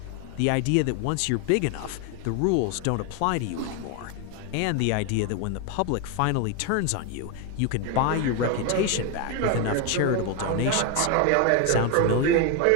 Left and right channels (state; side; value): different; both; correlation 0.01